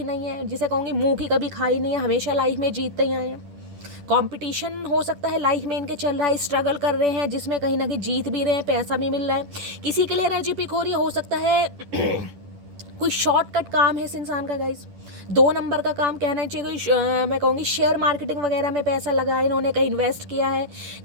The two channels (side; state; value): left; late; 10 ms